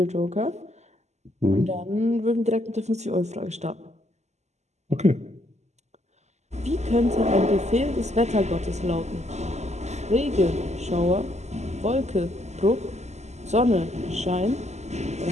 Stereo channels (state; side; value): late; left; 0.33 ms